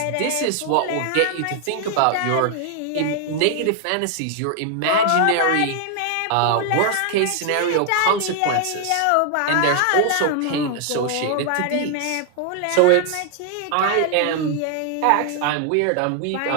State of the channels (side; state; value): both; different; correlation 0.00